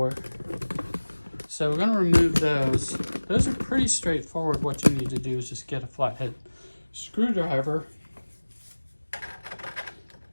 So we're going to remove those. Those are pretty straightforward. What you need to do is just get a flathead screwdriver,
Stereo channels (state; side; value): inverted; both; correlation -1.00